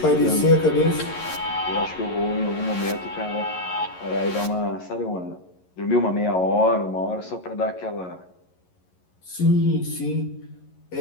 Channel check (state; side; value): late; right; 11 ms